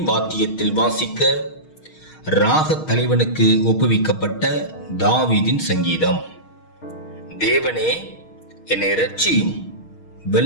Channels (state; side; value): late; right; 6.4 ms